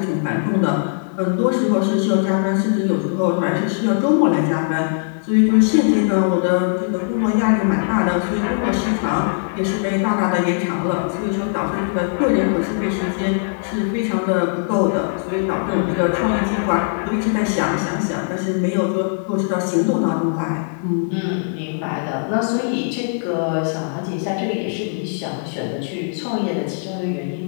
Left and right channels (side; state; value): right; silent; 58 dB below the other